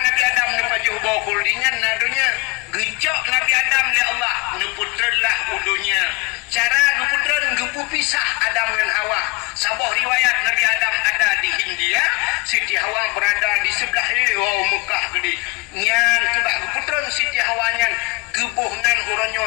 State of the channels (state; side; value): quieter; right; 26.6 dB